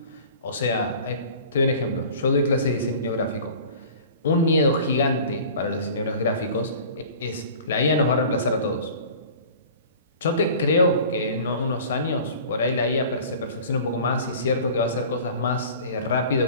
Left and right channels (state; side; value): inverted; both; correlation -0.43